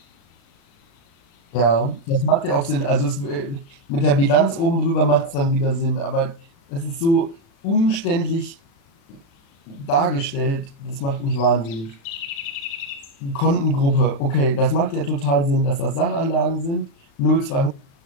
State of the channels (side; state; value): right; late; 36 ms